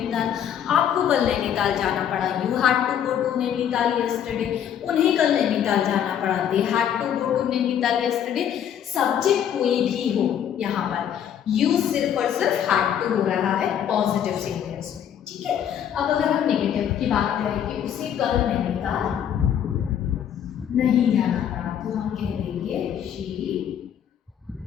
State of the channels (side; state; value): right; quieter; 9.4 dB